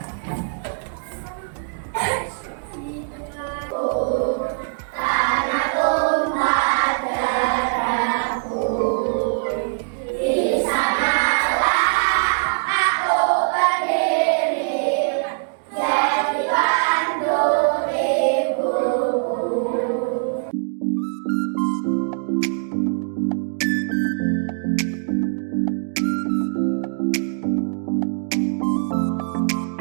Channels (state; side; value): silent; left; digital silence